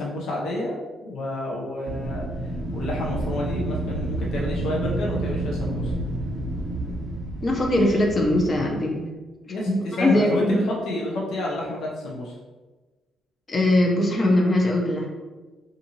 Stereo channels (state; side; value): normal; both; correlation 0.78